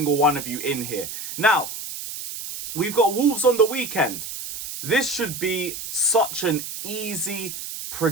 one of you in here. Now, we've got Wolves on the weekend. This should be such an easy,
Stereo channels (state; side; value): noise; right; hiss, 8 dB below the sound